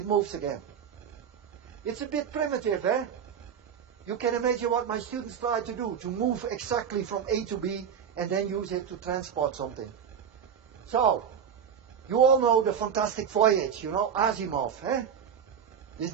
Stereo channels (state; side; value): quieter; left; 7.7 dB